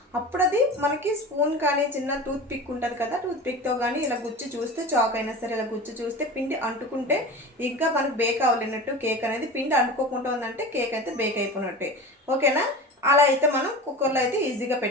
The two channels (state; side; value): normal; both; correlation 0.33